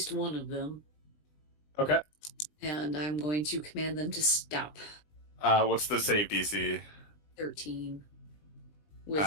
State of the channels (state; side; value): late; right; 20 ms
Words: one of them, Okay. and I'm going to command them to stop. What's the save DC? 13.